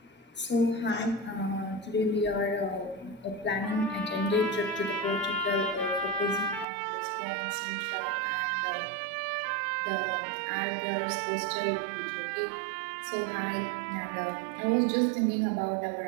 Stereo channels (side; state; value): left; drops out; at 6.7 s